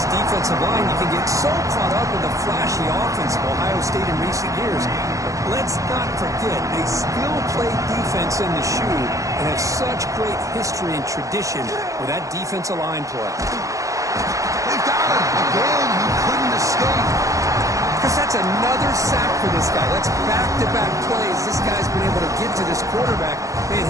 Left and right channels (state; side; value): late; left; 0.16 ms